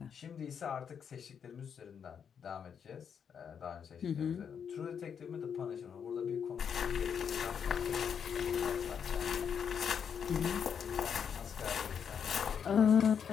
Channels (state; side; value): quieter; right; 7.4 dB